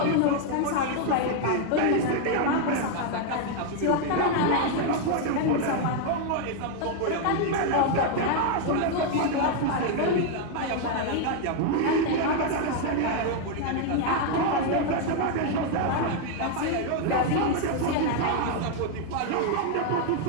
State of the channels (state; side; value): different; both; correlation 0.00